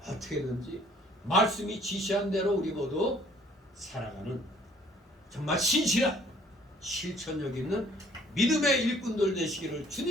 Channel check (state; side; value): normal; both; correlation 0.59